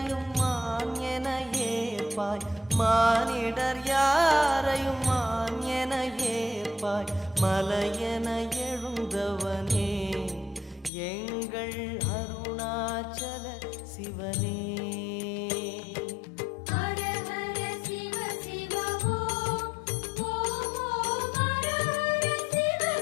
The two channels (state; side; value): drops out; right; at 10.9 s